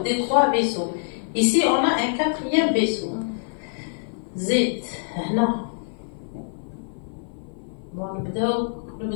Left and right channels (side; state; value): right; silent; 55 dB below the other